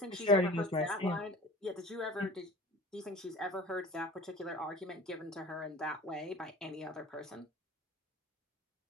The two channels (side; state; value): both; normal; correlation 0.42